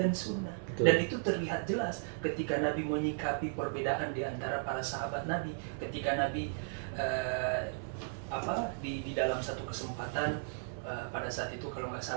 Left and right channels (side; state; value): left; silent; 54 dB below the other